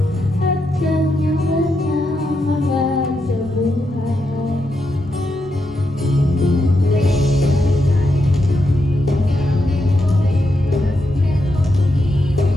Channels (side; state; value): both; normal; correlation 0.83